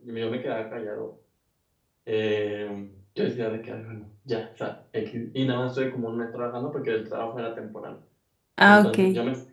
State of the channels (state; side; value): identical; both; correlation 1.00